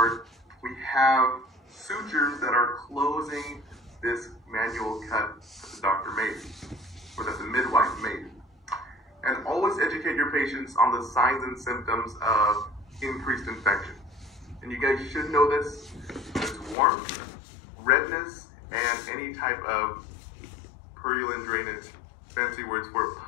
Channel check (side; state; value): right; drops out; at 16.8 s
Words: We have sutures that are closing this manual cut that the doctor made, or that the midwife made. And always educate your patients on the signs and symptoms of increased infection. And you guys should know this. It's warmth, redness, and any type of purulent drainage, fancy words for